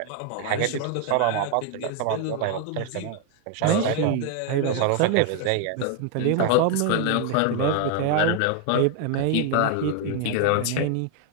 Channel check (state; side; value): different; both; correlation 0.00